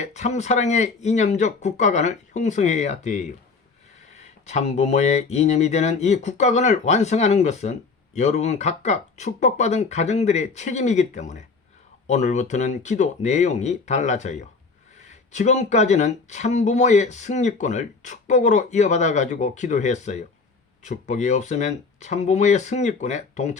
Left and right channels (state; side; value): quieter; right; 4.5 dB